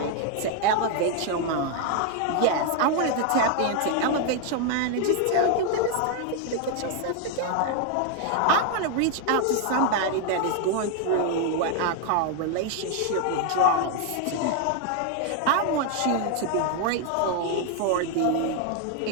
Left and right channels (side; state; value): both; different; correlation 0.01